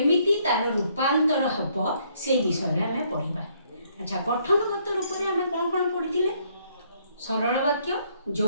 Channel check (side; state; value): both; inverted; correlation -0.68